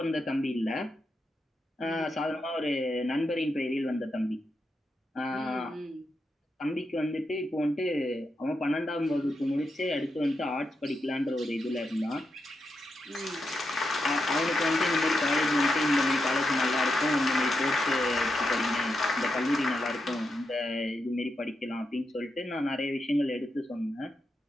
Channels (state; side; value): normal; both; correlation 0.85